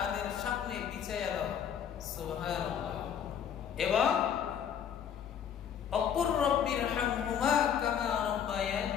সামনে বিছাইয়া দাও। সুবহানাল্লাহ। এবং অকুর রব্বিরহামহুমা কামা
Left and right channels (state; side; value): quieter; right; 8.5 dB